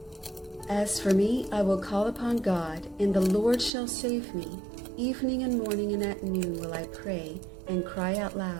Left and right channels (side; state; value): left; drops out; at 3.7 s